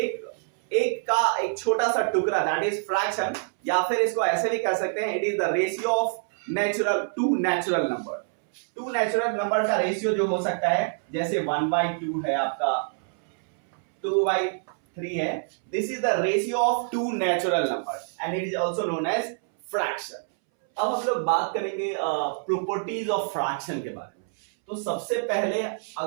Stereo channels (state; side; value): silent; left; 61 dB below the other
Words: छोटा सा टुकड़ा, दैट इज फ्रैक्शन। या फिर इसको ऐसे भी कह सकते हैं, it is the ratio of two natural number. Two natural number का रेशियो जो हो सकता है, जैसे 1/2 है आपका, 2/3 है। This is the ratio of two natural number and it is also known as fraction. अब हम लोग बात करेंगे प्रॉपर्टीज ऑफ फ्रैक्शन के बारे में। तो सबसे पहले